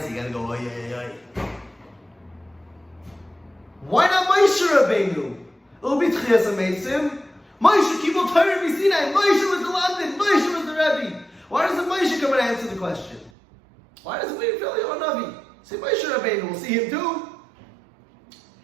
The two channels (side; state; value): left; drops out; at 13.3 s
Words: you gotta go oy oy oy. Why not Moshe Rabbeinu? It'll be Tchias HaMeisim. Moshe Kibul Torah B'Sinai. Moshe was the London. Moshe was the Rebbe. Why doesn't Moshe come and answer the question? Why doesn't we feel Eliyahu Navi? Say Moshe Rabbeinu, we'll see him too.